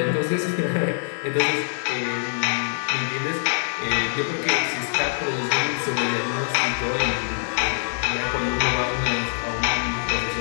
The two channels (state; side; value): silent; right; digital silence